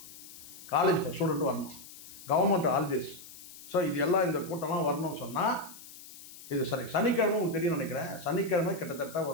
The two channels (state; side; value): noise; left; hiss, 16 dB below the sound